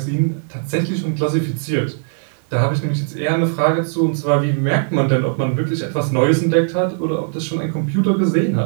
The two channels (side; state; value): left; silent; digital silence